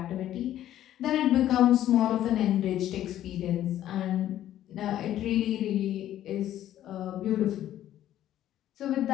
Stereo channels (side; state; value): right; quieter; 12.3 dB